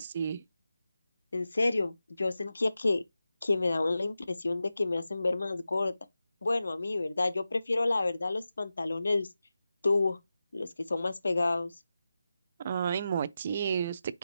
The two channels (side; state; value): both; inverted; correlation -0.92